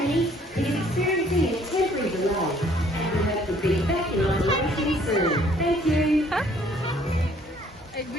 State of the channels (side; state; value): both; normal; correlation 0.60